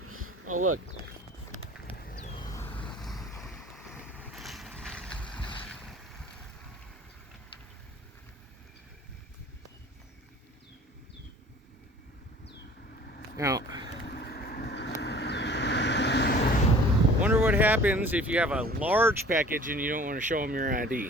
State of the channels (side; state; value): both; normal; correlation 0.48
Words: Oh, look. Now, wonder what happens if you have a large package and you don't want to show them your